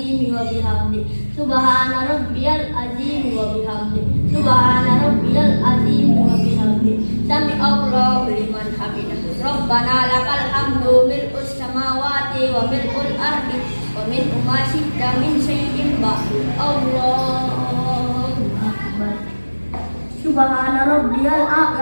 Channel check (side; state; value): both; inverted; correlation -1.00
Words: wa bihamdi. Subhana rabbiyal azimi wa bihamdi. Subhana rabbiyal azimi wa bihamdi. Sami Allahu liman hamidah. Rabbana lakal hamdu mil'us samawati wa mil'ul ardi wa mil'u ma syi'ta min syai'in ba'du. Allahu akbar. Subhana rabbiyal